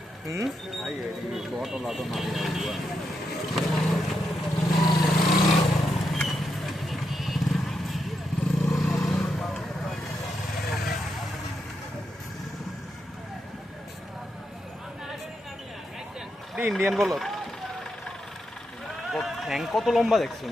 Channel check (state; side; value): normal; both; correlation 0.83